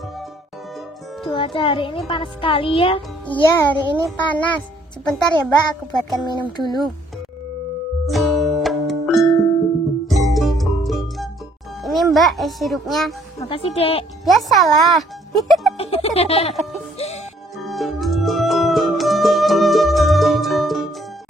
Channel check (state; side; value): normal; both; correlation 0.64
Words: Cuaca hari ini panas sekali ya. Iya, hari ini panas. Sebentar ya Mbak, aku buatkan minum dulu. Ini Mbak, es sirupnya. Makasih, Dek. Biasalah.